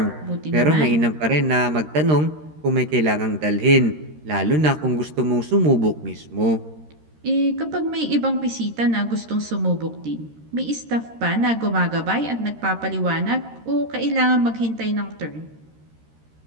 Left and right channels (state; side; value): late; left; 13 ms